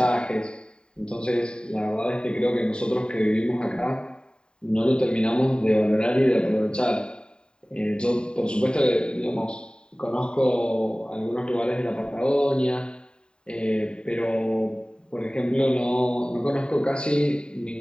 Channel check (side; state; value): right; late; 0.049 ms